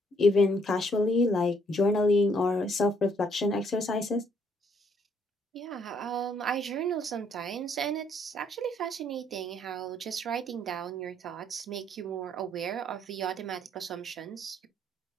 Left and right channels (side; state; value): both; normal; correlation 0.67